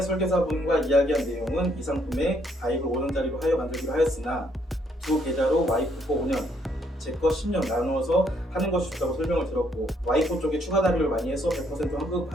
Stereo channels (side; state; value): both; normal; correlation 0.70